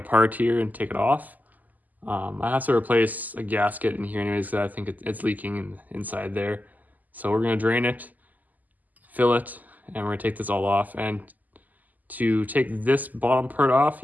here and take it off. I have to replace a gasket in here anyways because I think it's leaking inside there. So we're gonna drain it, fill it, and we're gonna take this all off. And to take this bottom part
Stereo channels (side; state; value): left; late; 0.081 ms